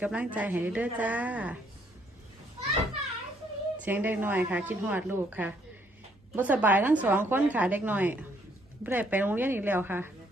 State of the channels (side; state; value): both; normal; correlation 0.68